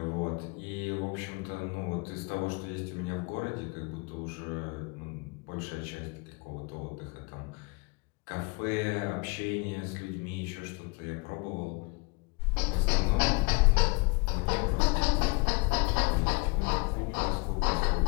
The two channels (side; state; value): right; quieter; 28.8 dB